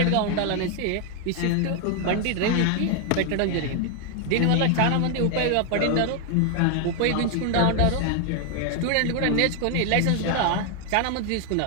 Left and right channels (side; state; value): both; different; correlation 0.00